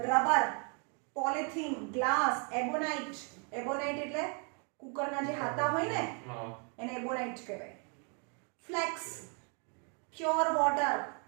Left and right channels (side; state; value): left; quieter; 38.3 dB